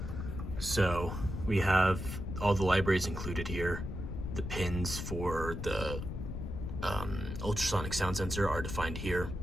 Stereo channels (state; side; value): noise; left; rumble, 5 dB below the sound